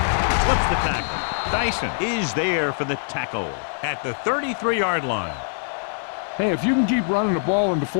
Slips the tackle. Dyson is there for the tackle at the 33-yard line. Hey, if you can keep running the ball in the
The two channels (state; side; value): silent; right; 63 dB below the other